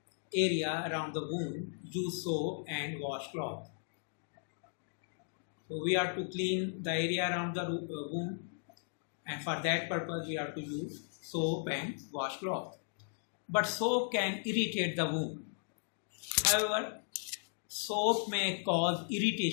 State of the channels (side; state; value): right; silent; digital silence